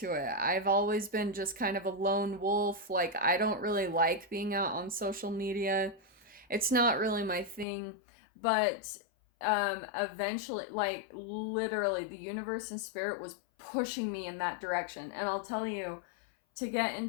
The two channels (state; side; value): drops out; right; at 7.7 s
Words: it. I've always been just kind of a lone wolf. Like, I don't really like being out on social media. It's not really my thing. But eventually, like, literally, the universe and spirit was pushing me in that direction. And I'll tell you, to get